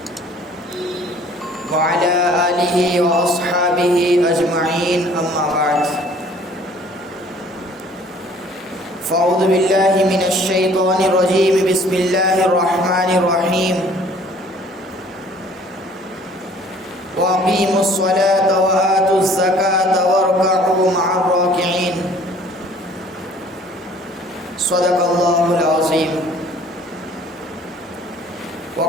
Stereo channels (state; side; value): normal; both; correlation 0.54